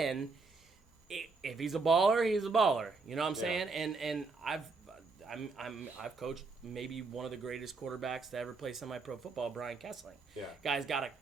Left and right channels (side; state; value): left; quieter; 4.2 dB